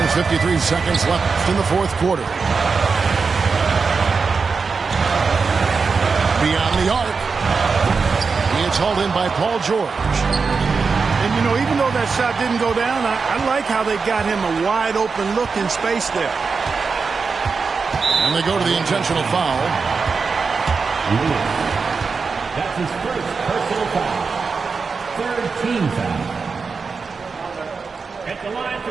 53 seconds left in the fourth quarter. Beyond the arc. It's hauled in by Paul George. And, you know, even though that shot didn't go down, I like how they got him a wide-open look in space there. And they go to the intentional foul. That's his first personal foul. Third team foul. At the line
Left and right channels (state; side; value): quieter; left; 4.9 dB